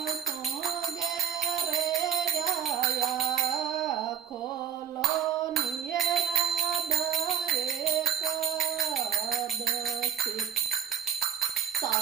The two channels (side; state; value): left; quieter; 9.0 dB